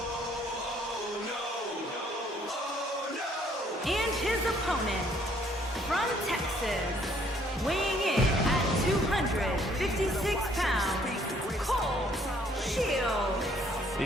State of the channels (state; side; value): normal; both; correlation 0.64